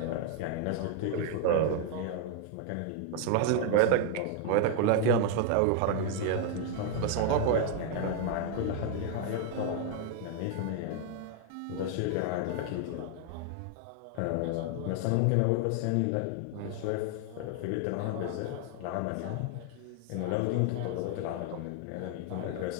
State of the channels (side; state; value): both; different; correlation 0.00